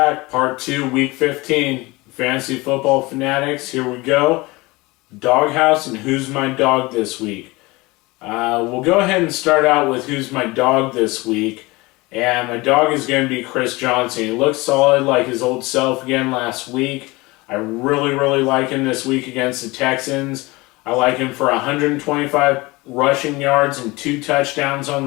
Part 2, Week 15. Fantasy Football Fanatics. Here we go. Doghouse and Who's My Dog this week. We'll go ahead and start out with Who's My Dog this week. And my dog is going to be Chris Johnson. He looks solid like his old self again last week. I really like him this week against the Texans. I like him for 125 rushing yards and 2 touchdowns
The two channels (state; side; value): quieter; right; 22.8 dB